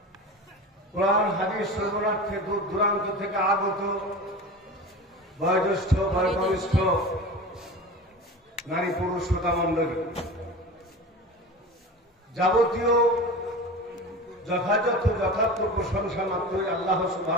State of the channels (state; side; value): normal; both; correlation 0.32